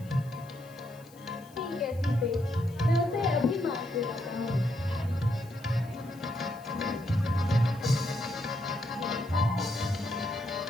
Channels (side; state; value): left; noise; hiss, 25 dB below the sound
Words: ठीक है सीते, मैं उसे अभी मार के लाता हूँ।